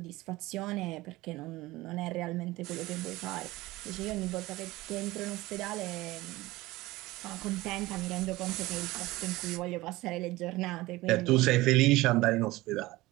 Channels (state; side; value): quieter; left; 19.2 dB